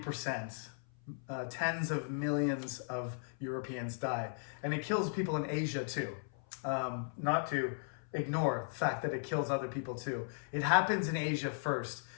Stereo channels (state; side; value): silent; right; 53 dB below the other